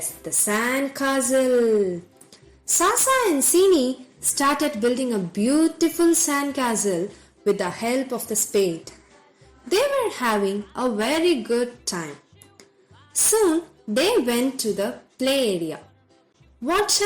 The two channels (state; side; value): identical; both; correlation 1.00